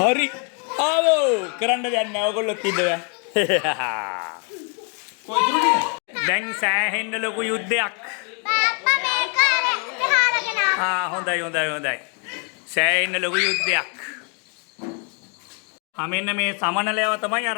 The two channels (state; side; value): quieter; right; 39.5 dB